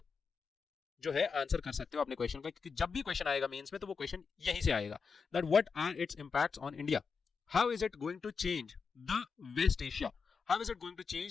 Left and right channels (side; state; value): right; quieter; 5.4 dB